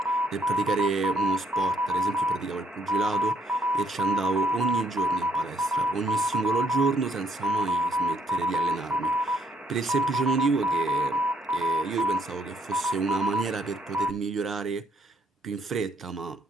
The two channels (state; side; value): normal; both; correlation 0.69